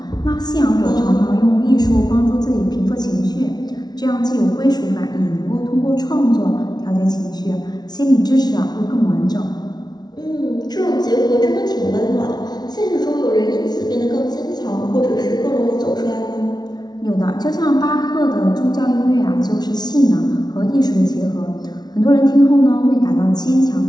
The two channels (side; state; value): right; late; 0.19 ms